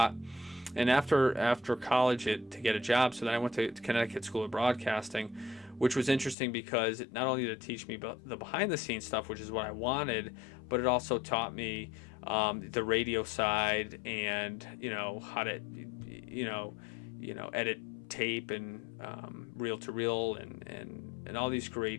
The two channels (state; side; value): drops out; right; at 6.4 s